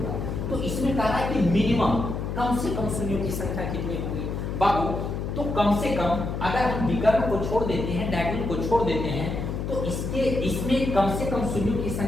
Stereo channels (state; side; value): noise; left; hum, 3 dB below the sound